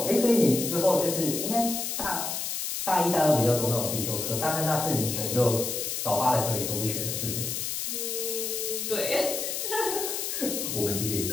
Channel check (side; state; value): left; noise; hiss, 3 dB below the sound